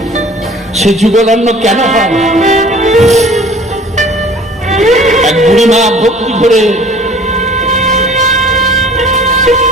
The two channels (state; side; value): normal; both; correlation 0.49